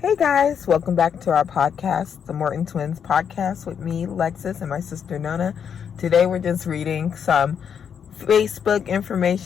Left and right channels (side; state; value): right; quieter; 7.6 dB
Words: guys, welcome back to our podcast, the Morton Twins podcast with me, Lexus, and my sister Nona. Today we're just reading some Facebook